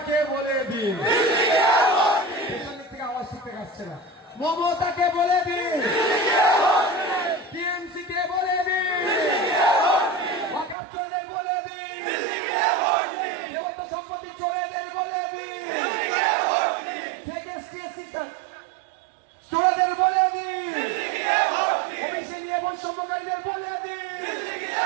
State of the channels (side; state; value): left; drops out; at 10.8 s